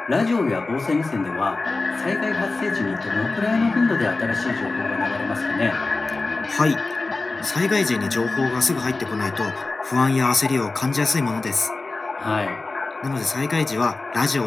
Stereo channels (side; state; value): right; quieter; 3.5 dB